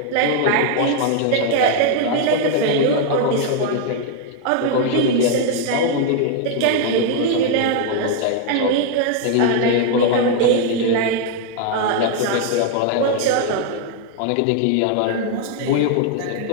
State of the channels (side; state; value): both; different; correlation 0.00